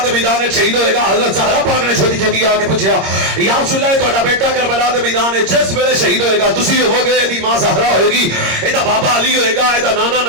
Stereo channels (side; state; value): left; late; 26 ms